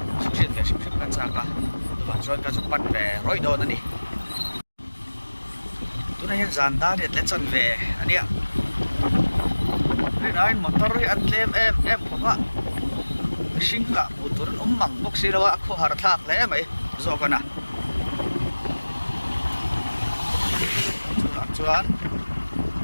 chụp chuyện về chụp cái chạc à và rồi cả chục bắt về rồi đồ nữa đi tôi này dàn ta để lên chân về anh ạ đây là anh motor ăn lem em không ạ sinh cả một tuần măng bốc xí đâu ạ khó hạt thạc lẽ mày do cái nào chuan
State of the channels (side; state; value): both; inverted; correlation -1.00